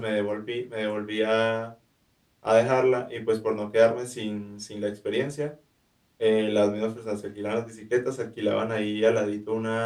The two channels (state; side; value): identical; both; correlation 1.00